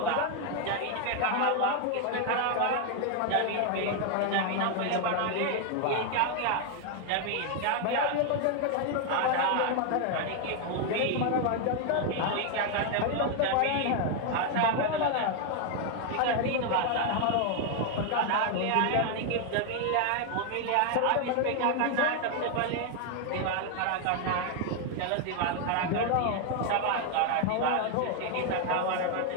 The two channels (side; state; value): both; different; correlation 0.01